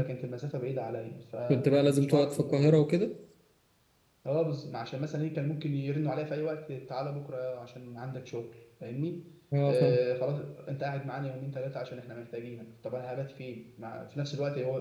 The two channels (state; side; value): identical; both; correlation 1.00